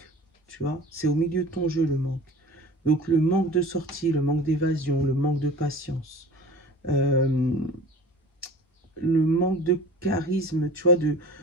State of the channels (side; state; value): both; normal; correlation 0.41